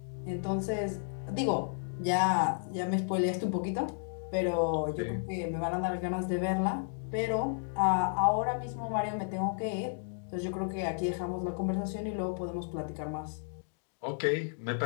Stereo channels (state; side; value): silent; right; digital silence